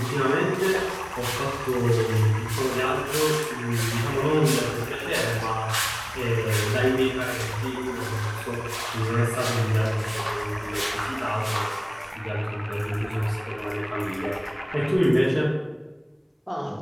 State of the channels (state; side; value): identical; both; correlation 1.00